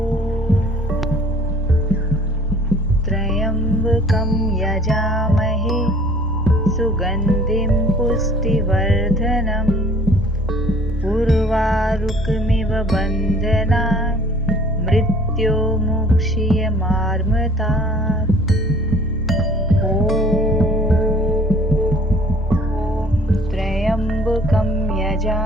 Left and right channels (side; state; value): both; normal; correlation 0.52